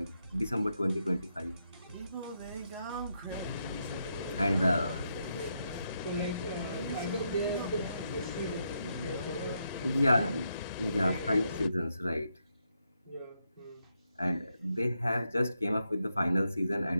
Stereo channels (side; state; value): both; inverted; correlation -0.80